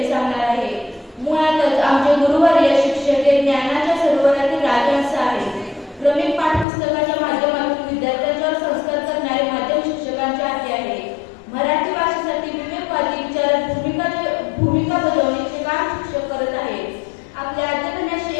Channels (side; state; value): right; drops out; at 6.7 s